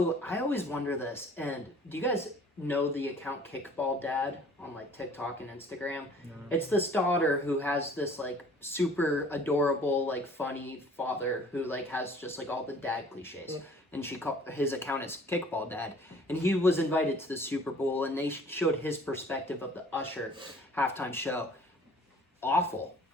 I always wonder this, and do you guys know the account Kickball Dad on like TikTok and Instagram? No. It's this daughter who has this like super adorable, like funny father who like has just like all the dad cliches. And his account is Kickball Dad, and he was invited to the Super Bowl, and they showed his perspective of the Usher halftime show. Awful,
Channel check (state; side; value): normal; both; correlation 0.52